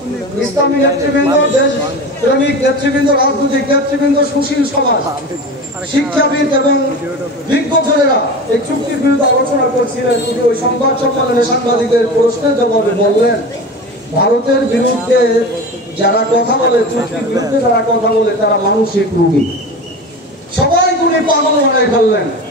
ইসলামী নেতৃবৃন্দ, দেশ প্রেমিক নেতৃবৃন্দ, রাজনৈতিক নেতৃবৃন্দ, সুশীল সমাজ, শিক্ষাবিদ এবং বিজ্ঞজনেরা এই চুক্তির বিরুদ্ধে আলোচনা করছিলেন। তিনি ওই সংবাদ সম্মেলনে সাংবাদিকদের প্রশ্নের জবাবে বললেন, ভারতের বিরুদ্ধে যারা কথা বলে, চুক্তির বিরুদ্ধে যারা কথা বলে, তারা মানসিক রোগী। সবাই উনি পাগল বানাই ফেললেন।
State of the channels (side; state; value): both; normal; correlation 0.30